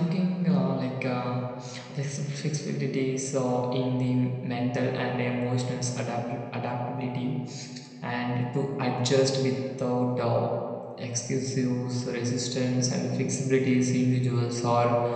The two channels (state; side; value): identical; both; correlation 1.00